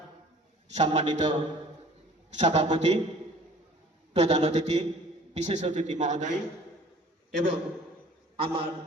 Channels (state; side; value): normal; both; correlation 0.50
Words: সম্মানিত সভাপতি, প্রধান অতিথি, বিশেষ অতিথি মহোদয় এবং আমার